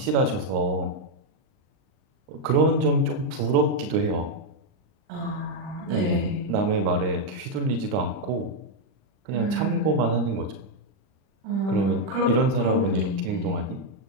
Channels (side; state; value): left; late; 39 ms